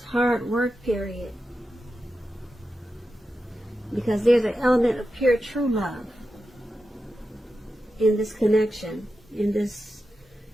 hard work period because there's an element of pure true love in this connection, in this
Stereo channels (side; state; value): both; normal; correlation 0.90